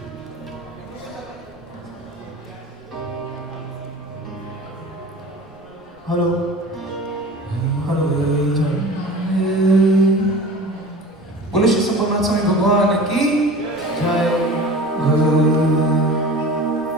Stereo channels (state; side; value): noise; right; rumble, 29 dB below the sound